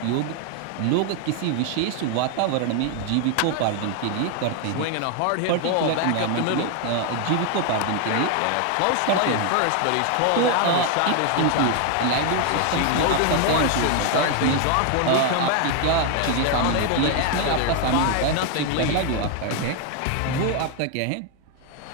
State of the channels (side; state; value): both; different; correlation 0.00